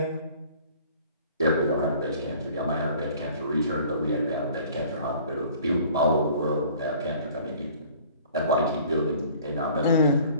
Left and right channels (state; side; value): inverted; both; correlation -0.51